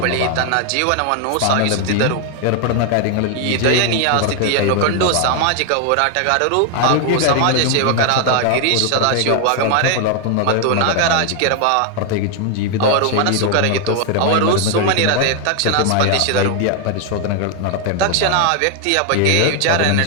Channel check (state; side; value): different; both; correlation 0.00